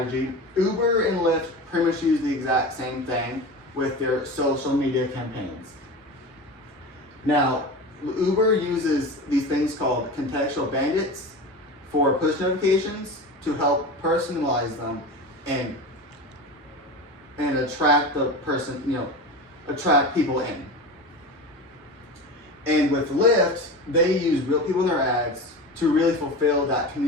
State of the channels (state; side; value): normal; both; correlation 0.28